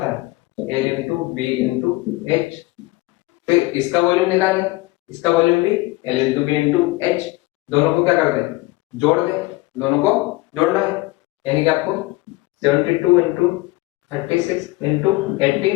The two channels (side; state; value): right; quieter; 21.3 dB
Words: है, A into B into H. फिर इसका वॉल्यूम निकालें, इसका वॉल्यूम भी L into B into H. दोनों को क्या कर दें, जोड़ दें, दोनों को जोड़ना है। यानी कि आपको 72 इंटू 36 इंटू